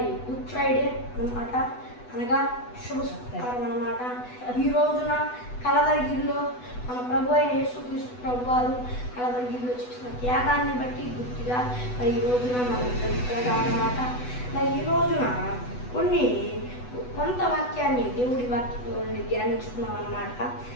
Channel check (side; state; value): right; late; 8.1 ms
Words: గుడ్ ఫ్రైడే అన్నమాట, అనగా శుభకారం అన్నమాట. ఈ రోజున కలవరిగిరిలో మన ప్రభు అయిన యేసుక్రీస్తు ప్రభు వారు కలవరిగిరిలో చేసిన త్యాగాన్ని బట్టి గుర్తుగా మరి ఈ రోజున మనం జరుపుకోవడం అన్నమాట. మరి ఈ రోజున కొంత వాక్యాన్ని దేవుడి వాక్యంలో ధ్యానించుకున్నాం అన్నమాట.